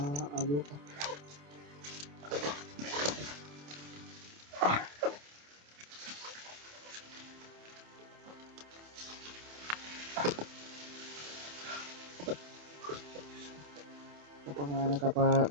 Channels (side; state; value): left; late; 28 ms